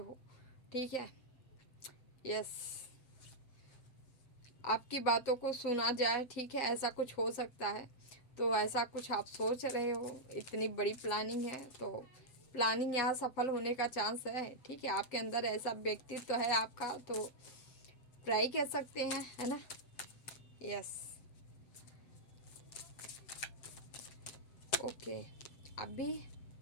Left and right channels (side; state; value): right; late; 7.8 ms